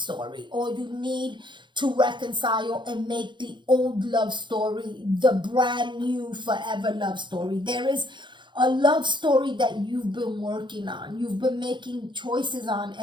or you need to reconcile and make the old love story the brand new forever love story. There is a love story that you've been working on, you've been making choices on,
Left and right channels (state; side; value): late; left; 0.23 ms